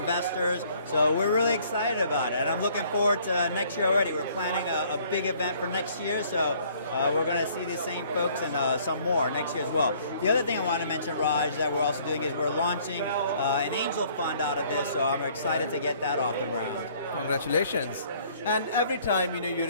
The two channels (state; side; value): inverted; both; correlation -0.59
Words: So we're really excited about it. And I'm looking forward to next year already. We're planning a big event for next year. So we're going to see the same folks and some more next year as well. The other thing I want to mention, Raj, that we're also doing is we're launching an angel fund out of this. So I'm excited to get that off the ground. Congratulations. And every time, you